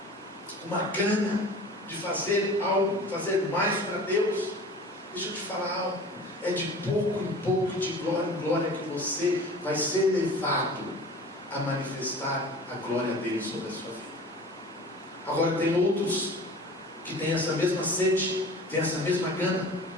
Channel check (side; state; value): both; normal; correlation 0.40